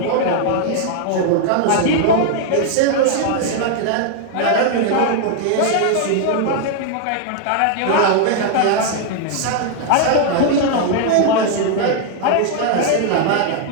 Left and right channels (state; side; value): different; both; correlation 0.00